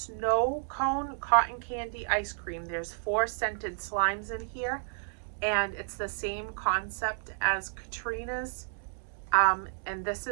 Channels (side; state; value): left; silent; digital silence